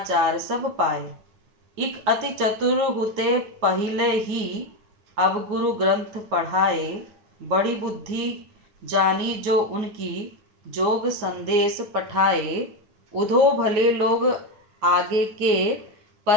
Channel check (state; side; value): late; left; 9.6 ms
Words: सब पाए। इक अति चतुर हुते पहिले ही, अब गुरु ग्रंथ पढ़ाए। बड़ी बुद्धि जानी जो उनकी, जोग संदेश पठाए। उधो भले लोग आगे के,